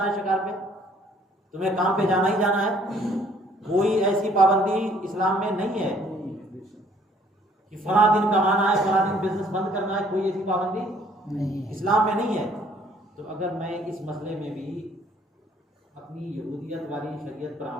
है, शिकार पे तुम्हें काम पे जाना ही जाना है। कोई ऐसी पाबंदी इस्लाम में नहीं है कि फला दिन कमाना है, फला दिन बिजनेस बंद करना है, कोई ऐसी पाबंदी इस्लाम में नहीं है। तो अगर मैं इस मसले में भी अपनी यहूदियत वाली शरीयत पर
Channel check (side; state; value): both; normal; correlation 0.60